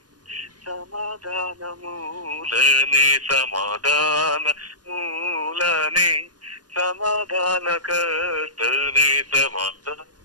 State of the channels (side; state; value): left; late; 0.69 ms